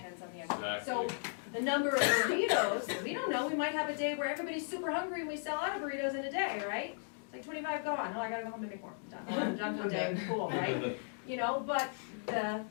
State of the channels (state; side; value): silent; right; digital silence